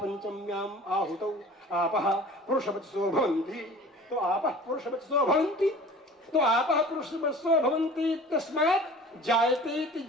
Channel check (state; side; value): normal; both; correlation 0.43